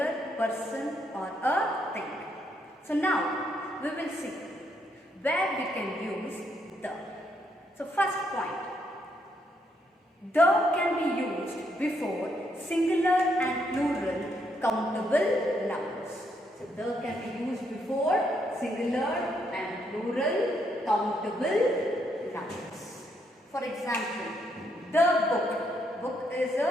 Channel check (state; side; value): normal; both; correlation 0.75